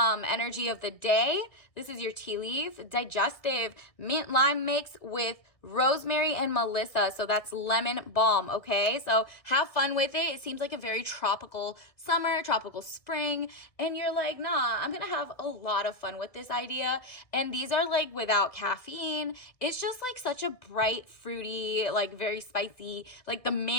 of the day. This is your tea leaf, digestive, mint lime mix with rosemary and melissa. So that's lemon balm, okay? So have fun with it. It seems like a very tropical summer, tropical spring. And you're like, nah, I'm going to have a lot of fun with this idea. And these are like without caffeine. It's just like such a bright, fruity, like very spicy, like the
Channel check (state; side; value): late; right; 1.6 ms